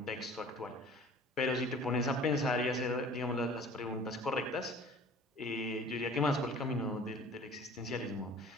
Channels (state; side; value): normal; both; correlation 0.47